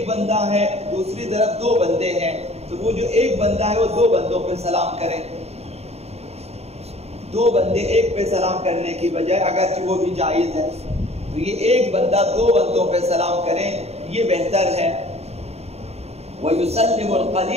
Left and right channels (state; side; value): late; left; 0.30 ms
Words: بندہ ہے دوسری طرف دو بندے ہیں تو وہ جو ایک بندہ ہے وہ دو بندوں پہ سلام کرے، دو بندے ایک پہ سلام کرنے کی بجائے اگرچہ وہ بھی جائز ہے تو یہ ایک بندہ دو بندوں پہ سلام کریں یہ بہتر ہے۔ وَيُسَلِّمُ